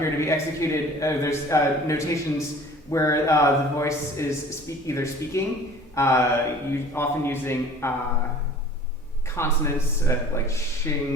to be executed. There's notations where the voice is either speaking, often using consonants, like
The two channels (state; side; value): normal; both; correlation 0.47